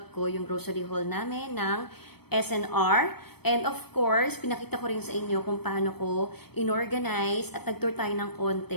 ko, yung grocery haul namin ng SNR. And of course, pinakita ko rin sa inyo kung paano ko inorganize at nag-tour tayo ng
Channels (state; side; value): late; right; 0.97 ms